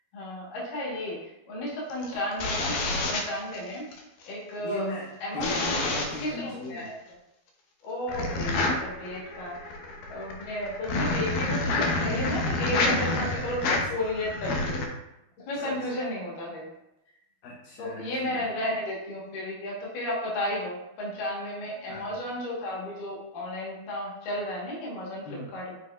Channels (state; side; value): late; right; 12 ms